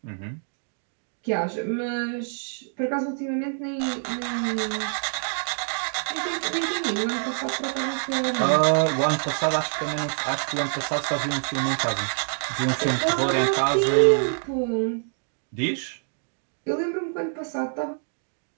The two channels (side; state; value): left; silent; digital silence